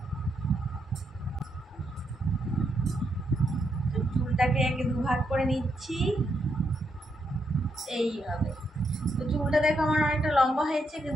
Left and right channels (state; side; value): normal; both; correlation 0.80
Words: তো চুলটাকে একে দুভাগ করে নিচ্ছি এইভাবে। তো চুলটা দেখো আমার অনেকটা লম্বা হয়েছে,